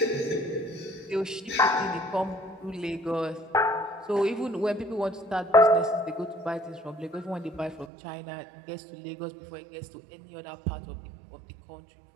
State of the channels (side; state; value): left; drops out; at 7.9 s